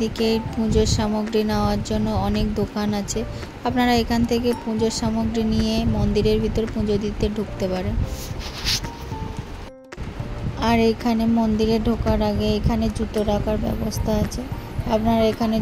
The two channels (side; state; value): both; identical; correlation 1.00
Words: পুজোর সামগ্রী নেওয়ার জন্য অনেক দোকান আছে। আপনারা এখান থেকে পুজোর সামগ্রী নিয়ে মন্দিরের ভিতর পুজো দিতে ঢুকতে পারেন। আর এখানে মন্দিরে ঢোকার আগে এখানে জুতো রাখার ব্যবস্থা আছে। আপনারা এখানে